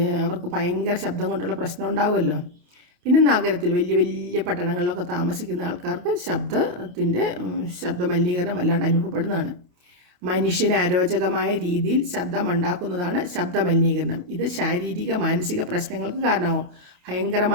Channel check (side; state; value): left; late; 28 ms